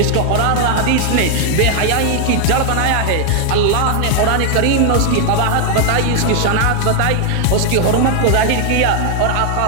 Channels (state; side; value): different; both; correlation 0.00